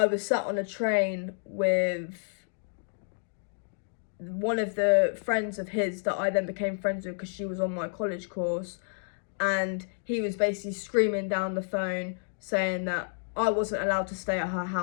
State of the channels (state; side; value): silent; right; digital silence